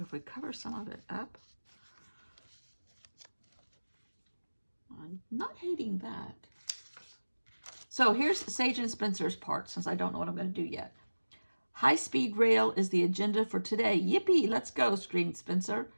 if we cover some of it up, I'm not hating that. So here's Sage and Spencer's part, since I don't know what I'm going to do yet. High-speed rail is the agenda for today. Yippee, let's go, screamed Spencer.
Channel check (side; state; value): both; inverted; correlation -1.00